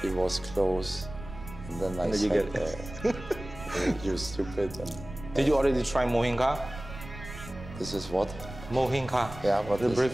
was close. And then I said, you stupid. And did you already try mohinga? This is what? Mohinga. Yeah, what the is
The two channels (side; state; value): right; noise; rumble, 13 dB below the sound